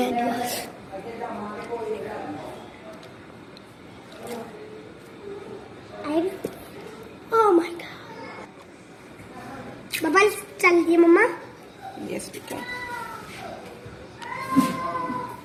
Oh my god. Bubble चल दिए मम्मा। यस बेटा।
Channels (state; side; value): identical; both; correlation 1.00